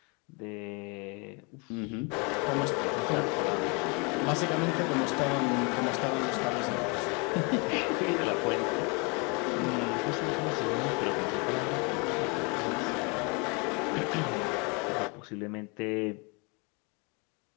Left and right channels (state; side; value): quieter; right; 31.2 dB